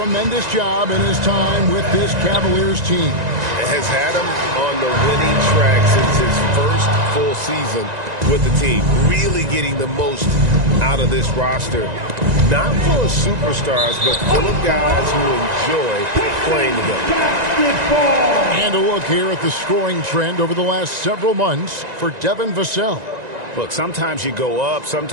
job in his time with this Cavaliers team. Has had him on the winning track since his first full season with the team. Really getting the most out of this roster. Not full of superstars, but full of guys who enjoy playing together. And a look here at the scoring trend over the last several months for Devin Vassell. Look, sometimes you go up,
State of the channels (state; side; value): late; left; 1.9 ms